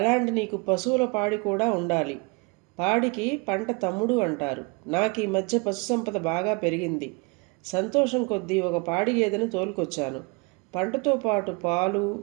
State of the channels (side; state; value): left; quieter; 29.8 dB